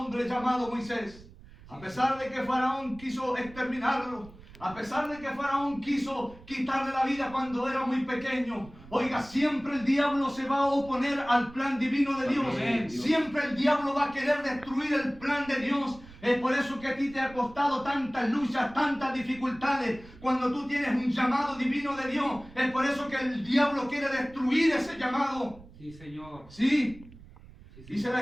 llamado Moisés. A pesar de que Faraón quiso exterminarlo, a pesar de que Faraón quiso quitarle la vida cuando era muy pequeño, oiga, siempre el diablo se va a oponer al plan divino de Dios. Amén. Siempre el diablo va a querer destruir el plan de Dios. Es por eso que a ti te ha costado tantas luchas, tantas dificultades, cuando tú tienes un llamado divino de Dios. Es por eso que el diablo quiere destruir ese llamado. Sí, Señor. Sí, Sí, dice Señor.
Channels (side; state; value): right; noise; rumble, 20 dB below the sound